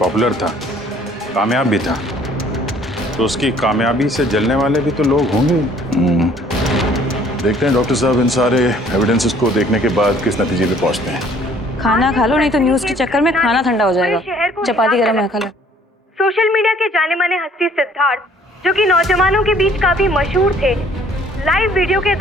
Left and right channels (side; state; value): both; normal; correlation 0.58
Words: था, कामयाब भी था, तो उसकी कामयाबी से जलने वाले भी तो लोग होंगे। देखते हैं डॉक्टर साहब इन सारे एविडेंसेस को देखने के बाद किस नतीजे पे पहुंचते हैं। खाना खा लो, नहीं तो न्यूज के चक्कर में खाना ठंडा हो जाएगा। चपाती गरम है, खा लो। सोशल मीडिया के जाने माने हस्ती सिद्धार्थ, जो कि नौजवानों के बीच काफी मशहूर थे, लाइव वीडियो के